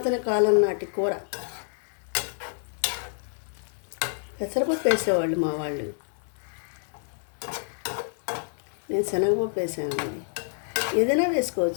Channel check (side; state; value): right; silent; digital silence